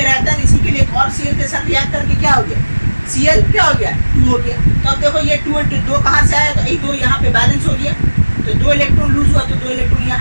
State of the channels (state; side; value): inverted; both; correlation -1.00